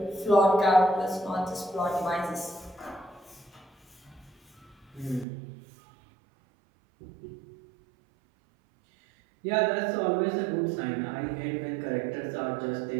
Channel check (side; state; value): left; drops out; at 5.2 s